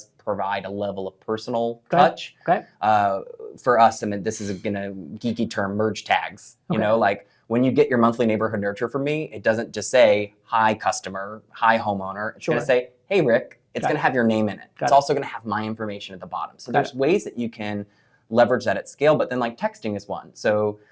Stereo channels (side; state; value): both; identical; correlation 1.00